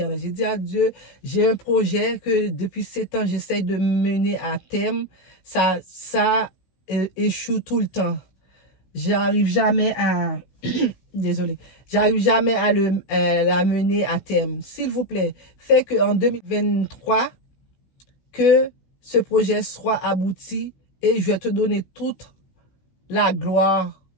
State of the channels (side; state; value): right; late; 16 ms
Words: J'ai dit à Dieu, j'ai un projet que depuis 7 ans, j'essaye de mener à terme. Ça échoue tout le temps. J'arrive jamais à désolé, j'arrive jamais à la mener à terme. S'il vous plaît, faites qu'en 2023, que ce projet soit abouti et je vais te donner toute la gloire,